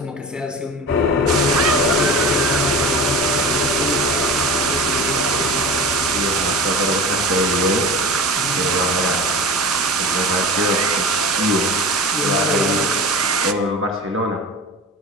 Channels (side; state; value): both; normal; correlation 0.33